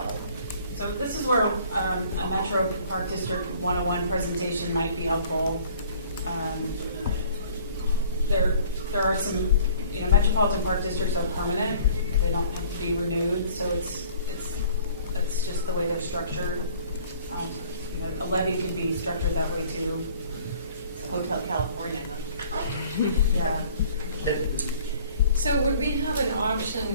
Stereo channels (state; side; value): inverted; both; correlation -0.53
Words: So this is where a Metro Park District 101 presentation might be helpful. There are some, Metropolitan Park Districts are permanent. They don't have to be renewed, so that's just the way they're structured. A levy could be structured that way too. Hotel California, huh? Yeah. So would we have an option,